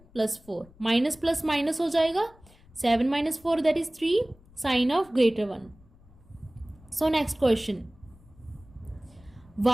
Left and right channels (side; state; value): left; noise; rumble, 26 dB below the sound